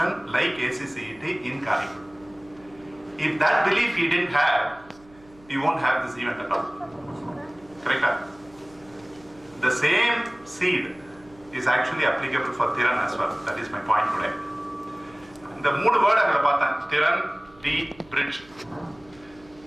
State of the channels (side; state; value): right; noise; hum, 27 dB below the sound